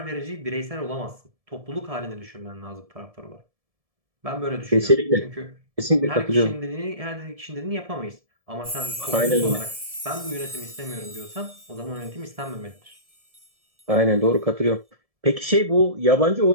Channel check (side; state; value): left; late; 1.7 ms